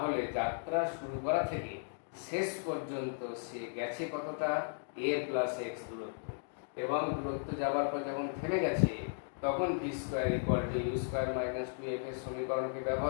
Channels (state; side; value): silent; right; digital silence